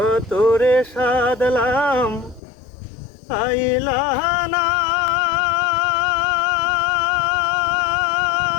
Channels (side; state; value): right; drops out; at 2.4 s